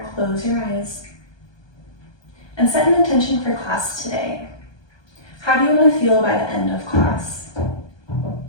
close your eyes, and set an intention for class today. How do you want to feel by the end of class?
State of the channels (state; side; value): late; right; 1.2 ms